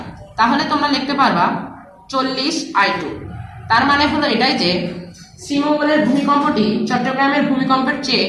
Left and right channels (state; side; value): identical; both; correlation 1.00